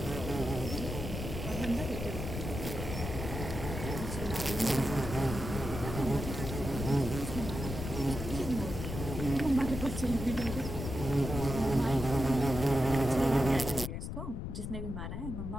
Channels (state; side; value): noise; left; rumble, 5 dB below the sound